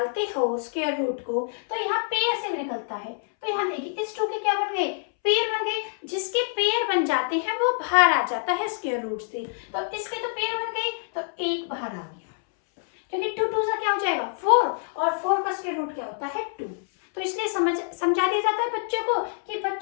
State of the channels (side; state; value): right; silent; 61 dB below the other